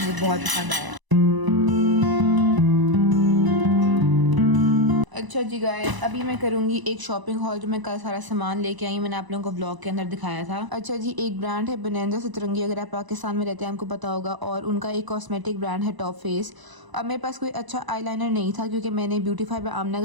मुझे बहुत पसंद आया। अच्छा जी गाइस, अभी मैं करूँगी एक शॉपिंग हॉल जो मैं कल सारा सामान लेके आई, मैंने आप लोगों को व्लॉग के अंदर दिखाया था। अच्छा जी, एक ब्रांड है बनैंजा सतरंगी, अगर आप पाकिस्तान में रहते हैं आपको पता होगा, और उनका एक कॉस्मेटिक ब्रांड है टॉप फेस। अब मेरे पास कोई अच्छा आईलाइनर नहीं था क्योंकि मैंने ब्यूटीफाई बाय आमना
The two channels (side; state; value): left; late; 1.0 ms